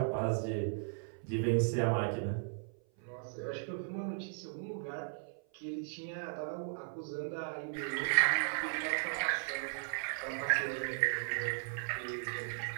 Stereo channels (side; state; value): left; silent; 53 dB below the other